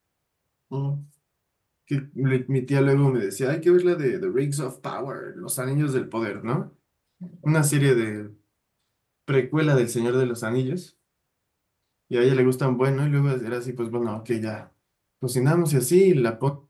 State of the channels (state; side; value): identical; both; correlation 1.00